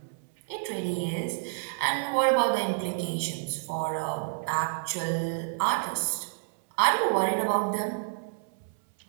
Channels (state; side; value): silent; left; 59 dB below the other